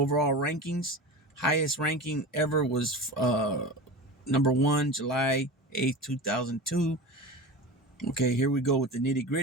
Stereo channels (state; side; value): normal; both; correlation 0.30